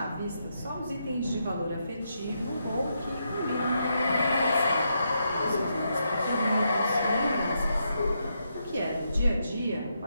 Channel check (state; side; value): inverted; both; correlation -0.81